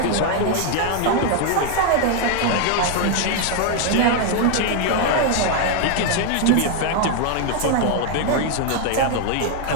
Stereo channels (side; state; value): both; different; correlation 0.01